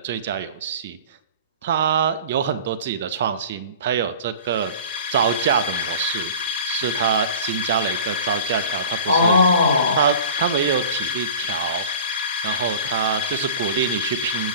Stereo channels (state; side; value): inverted; both; correlation -0.39